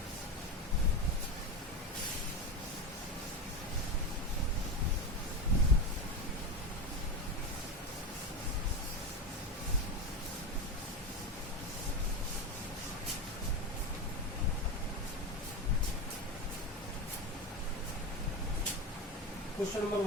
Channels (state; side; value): normal; both; correlation 0.19